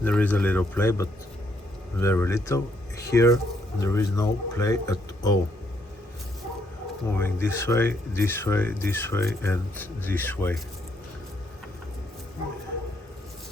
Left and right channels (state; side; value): normal; both; correlation 0.73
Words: There is a little play, but very little. Here there is no play at all. Moving this way, this way, this way, and this way.